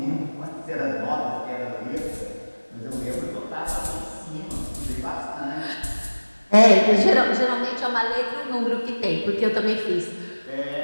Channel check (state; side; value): inverted; both; correlation -1.00